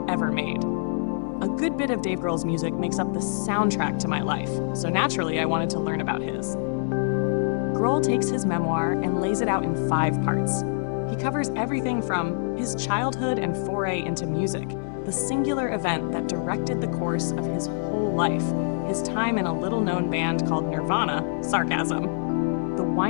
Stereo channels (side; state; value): right; silent; digital silence